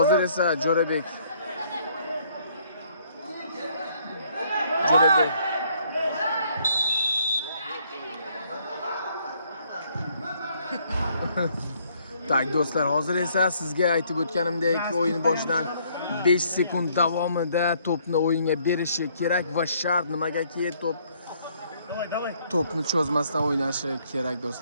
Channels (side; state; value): both; inverted; correlation -0.66